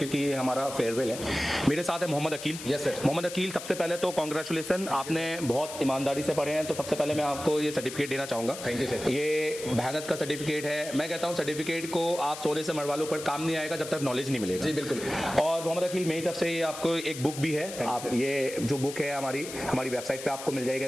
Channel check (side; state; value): left; noise; hiss, 11 dB below the sound